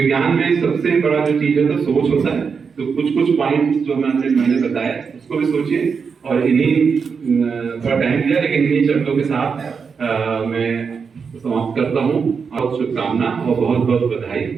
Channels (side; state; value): left; quieter; 5.8 dB